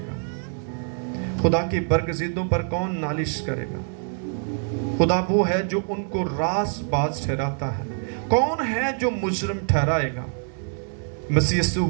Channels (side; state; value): left; silent; 62 dB below the other